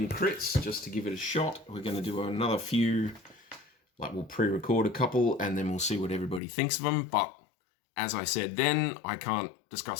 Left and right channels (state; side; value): drops out; right; at 6.4 s